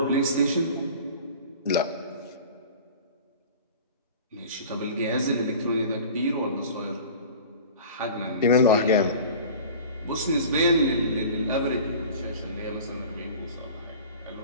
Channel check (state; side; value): inverted; both; correlation -0.40